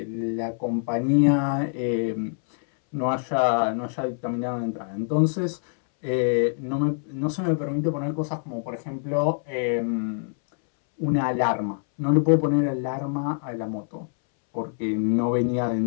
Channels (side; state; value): right; silent; 62 dB below the other